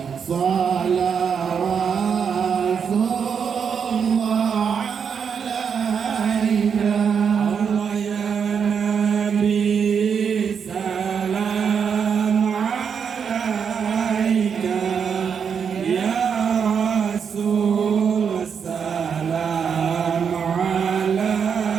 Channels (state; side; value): quieter; left; 6.8 dB